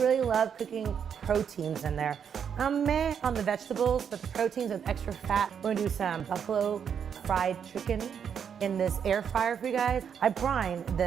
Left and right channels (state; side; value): quieter; left; 7.6 dB